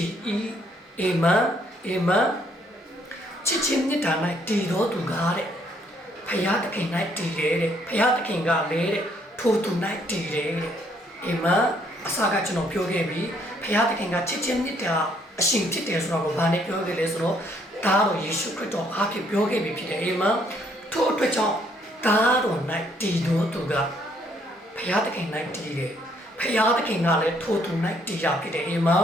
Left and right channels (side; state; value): both; normal; correlation 0.68